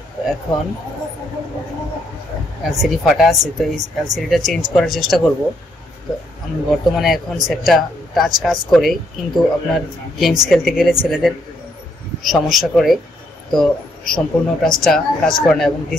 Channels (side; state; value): both; normal; correlation 0.73